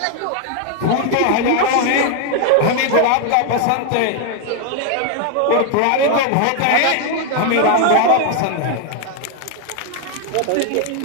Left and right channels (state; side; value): different; both; correlation 0.00